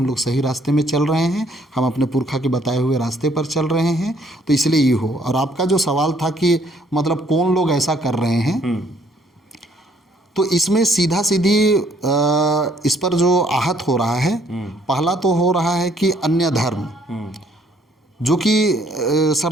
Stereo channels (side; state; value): both; normal; correlation 0.64